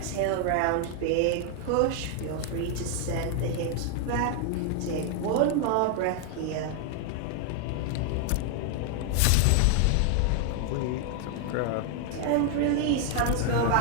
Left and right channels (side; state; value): both; different; correlation 0.00